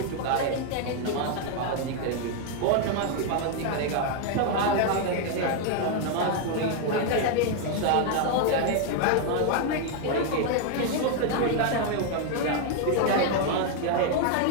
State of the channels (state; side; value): different; both; correlation 0.01